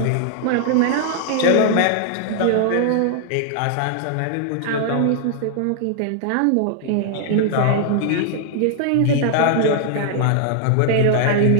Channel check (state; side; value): different; both; correlation -0.01